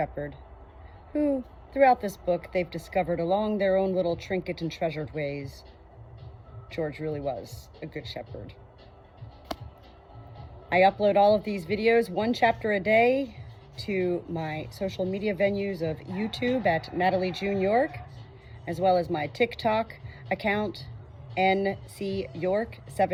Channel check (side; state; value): both; identical; correlation 1.00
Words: who, throughout this book, they've discovered along their own little trinket and treasured ways, George really was a good shepherd. I upload all of these videos, 1 chapter a day, to my social media venues of YouTube at Natalie June York, as well as my TikTok account, NC York